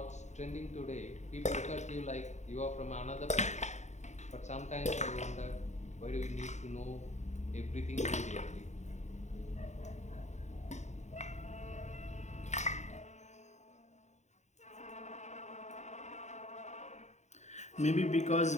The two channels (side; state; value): right; late; 0.34 ms